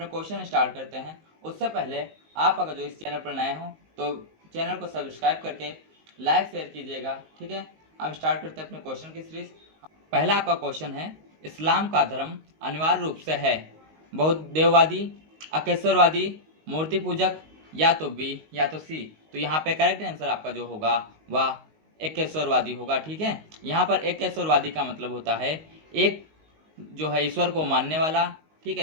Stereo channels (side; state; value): left; late; 19 ms